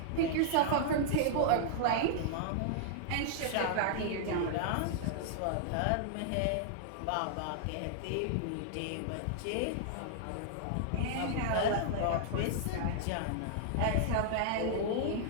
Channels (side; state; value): both; different; correlation -0.01